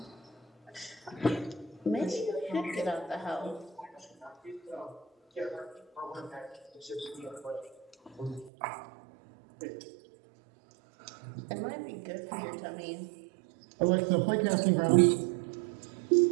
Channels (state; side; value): drops out; left; at 8.5 s